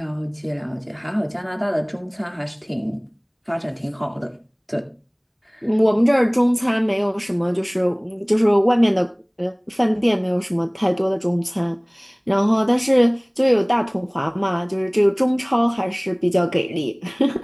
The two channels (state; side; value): identical; both; correlation 1.00